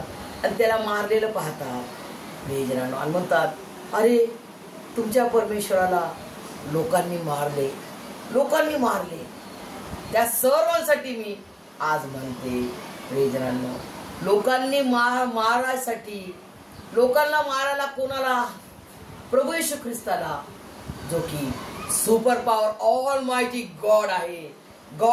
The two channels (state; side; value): identical; both; correlation 1.00